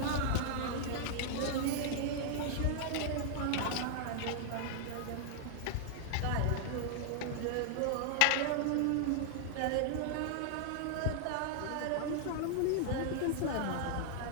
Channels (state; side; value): different; both; correlation -0.01